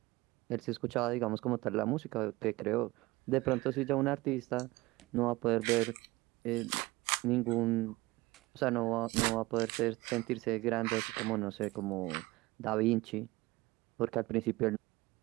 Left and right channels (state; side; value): quieter; left; 20.7 dB